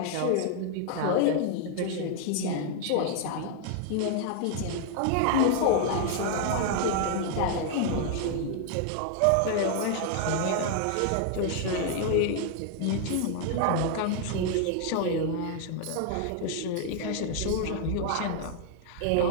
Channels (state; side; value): different; both; correlation 0.00